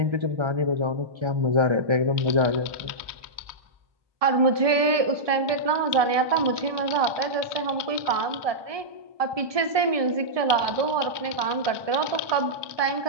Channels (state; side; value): late; left; 1.2 ms